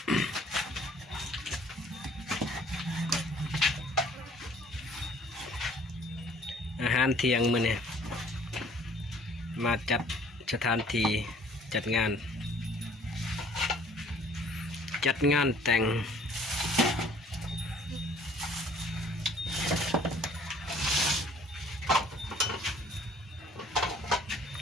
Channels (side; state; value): both; normal; correlation 0.55